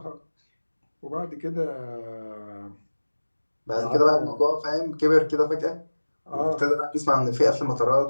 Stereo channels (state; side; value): inverted; both; correlation -1.00